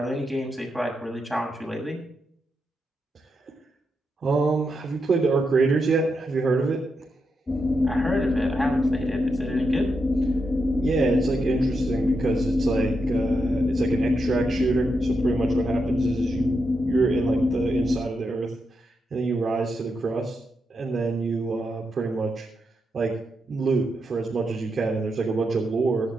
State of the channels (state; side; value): normal; both; correlation 0.84